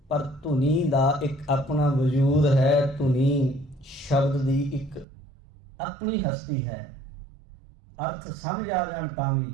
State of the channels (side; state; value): left; drops out; at 5.1 s